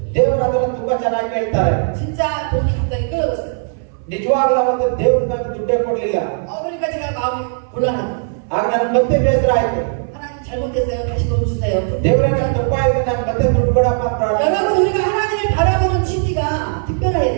ದೇವರು ಅದನ್ನು ತುಂಬಾ ಚೆನ್ನಾಗಿ ಹೇಳ್ತಾರೆ. 진짜 돈이 갑자기 끊어졌어요. ನಿಜವಾಗ್ಲೂ ಅವತ್ತು ದೇವರು ನನಗೆ ದುಡ್ಡೇ ಕೊಡ್ಲಿಲ್ಲ. 그러니까 제가 마음이 곤란하고 ಆಗ ನನಗೆ ಮತ್ತೆ ಬೇಸರ ಆಯ್ತು. 하나님 잘못했어요. 다시 돈 주세요. ದೇವರೇ ನಾನು ತಪ್ಪಾಯ್ತು, ನಾನು ಮತ್ತೆ ದುಡ್ಡು ಕೊಡಪ್ಪ ಅಂತ ಪ್ರಾರ್ಥನೆ. 여러분 우리가 하나님을 바라보는 지지가 특별해야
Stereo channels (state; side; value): silent; left; 62 dB below the other